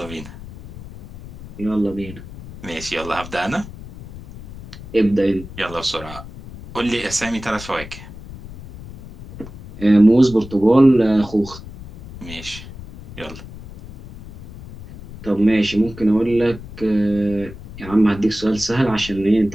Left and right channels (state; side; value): noise; left; rumble, 15 dB below the sound